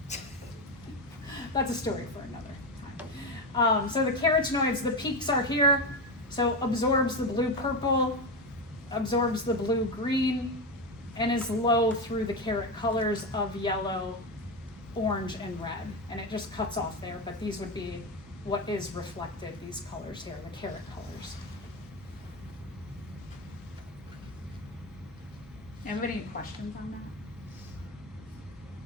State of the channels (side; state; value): both; normal; correlation 0.15